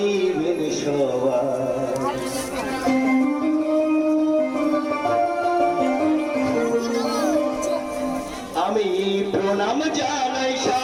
সবাই। আমি প্রণাম জানাই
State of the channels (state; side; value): identical; both; correlation 1.00